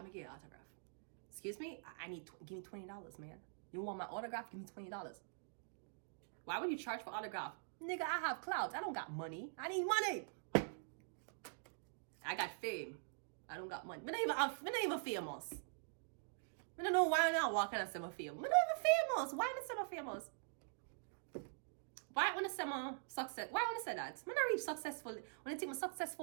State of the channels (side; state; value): left; silent; digital silence